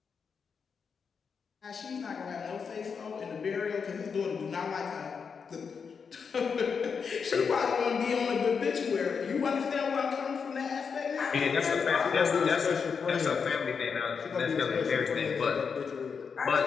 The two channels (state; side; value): quieter; right; 6.0 dB